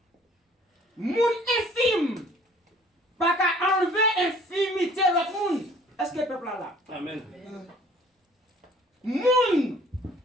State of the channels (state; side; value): normal; both; correlation 0.54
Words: moun infime, pas qu'à enlever infimité de l'autre monde. Est-ce que le peuple là? Amen. Moun